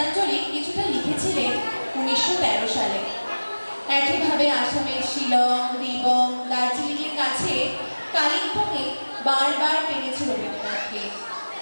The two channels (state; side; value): inverted; both; correlation -1.00